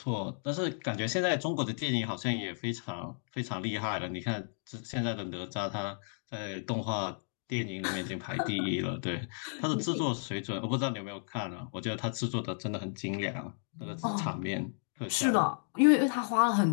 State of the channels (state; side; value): silent; right; digital silence